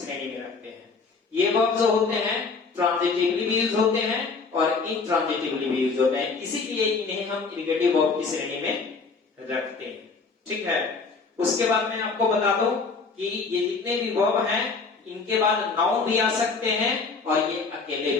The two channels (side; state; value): right; quieter; 4.6 dB